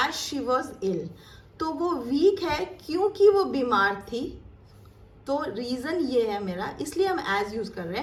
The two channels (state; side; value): identical; both; correlation 1.00